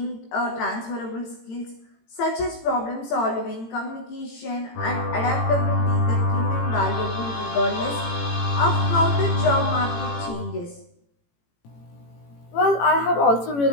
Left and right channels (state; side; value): late; right; 18 ms